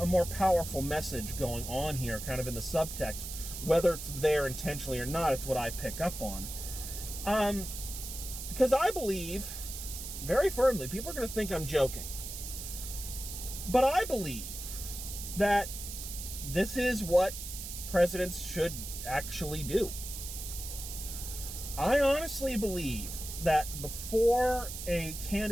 more powerful message going on here, kind of in the subtext. Whether it's there intentionally or not, it's what I pick up on. Because I believe, very firmly, people are going to think I'm joking, but I believe that this is what presidents should actually do. I honestly believe that before a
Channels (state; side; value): noise; right; hiss, 8 dB below the sound